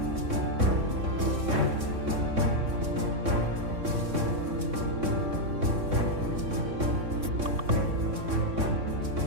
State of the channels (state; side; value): late; left; 3.6 ms